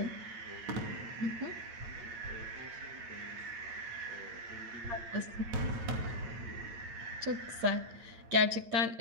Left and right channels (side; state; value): left; late; 8.8 ms